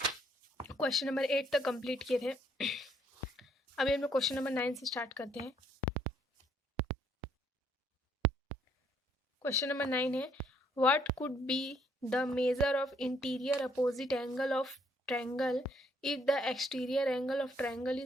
क्वेश्चन नंबर 8 तक कंप्लीट किए थे। अभी हम लोग क्वेश्चन नंबर 9 से स्टार्ट करते हैं। क्वेश्चन नंबर 9 है, what could be the measure of interior opposite angle of triangle if the exterior angle of triangle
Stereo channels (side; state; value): both; normal; correlation 0.68